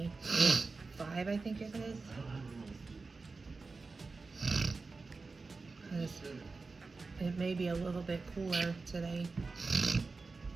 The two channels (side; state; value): left; quieter; 4.0 dB